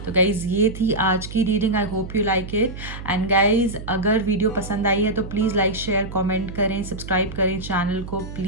तो गाइज़ ये थी आज की reading, I hope you like it. And guys अगर वीडियो पसंद आई है तो प्लीज़ लाइक शेयर कमेंट करें, सब्सक्राइब करें चैनल को,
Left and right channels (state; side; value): noise; right; hum, 11 dB below the sound